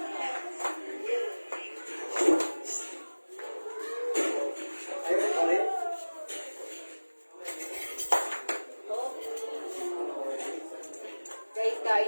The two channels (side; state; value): both; inverted; correlation -1.00